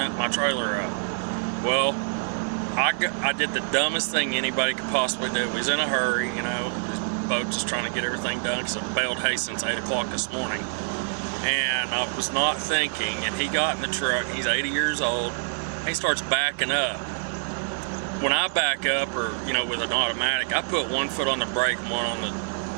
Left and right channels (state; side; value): silent; left; digital silence